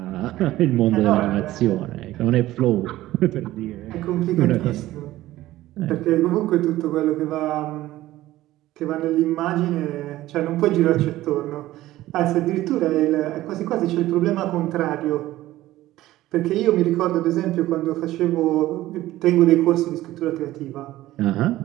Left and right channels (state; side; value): quieter; left; 15.7 dB